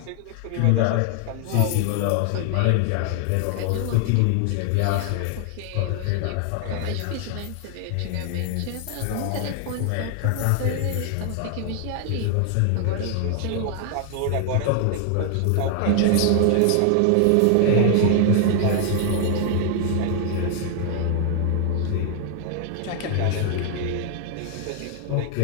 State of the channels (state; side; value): different; both; correlation 0.00